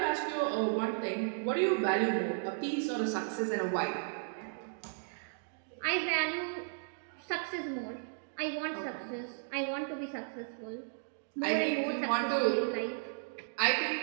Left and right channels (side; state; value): left; silent; digital silence